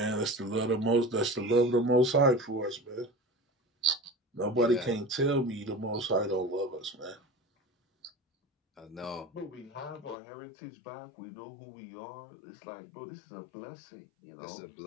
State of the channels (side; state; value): right; drops out; at 10.2 s